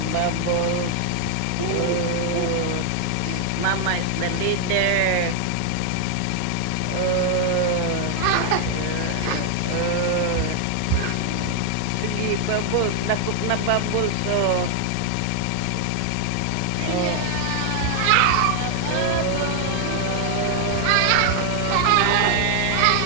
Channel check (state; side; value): different; both; correlation 0.00